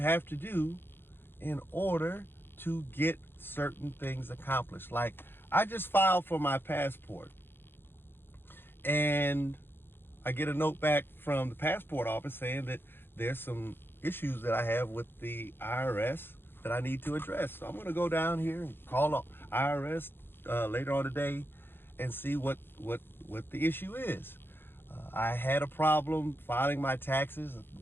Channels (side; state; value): right; late; 0.10 ms